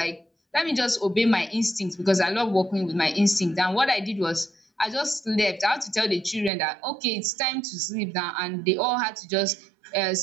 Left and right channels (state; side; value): drops out; left; at 6.5 s